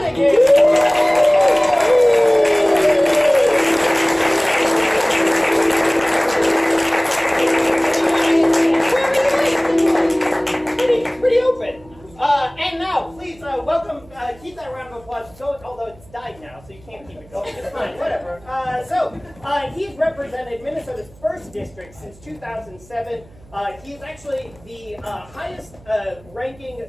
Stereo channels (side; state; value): right; noise; hum, 25 dB below the sound